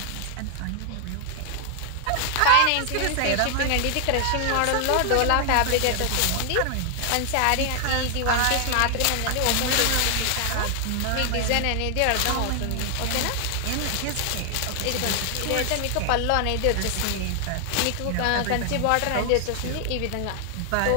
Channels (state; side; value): different; both; correlation 0.00